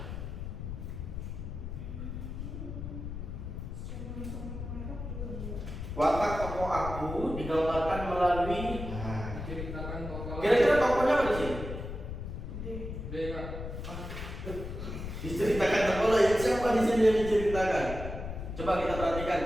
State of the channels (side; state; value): left; noise; rumble, 7 dB below the sound